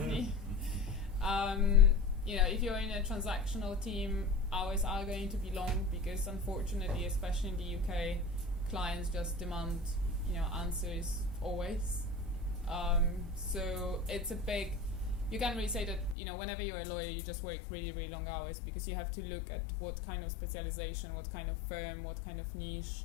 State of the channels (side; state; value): right; drops out; at 16.2 s